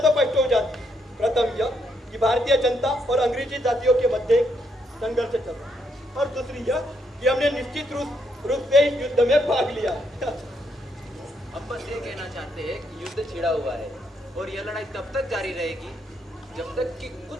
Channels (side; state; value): both; normal; correlation 0.75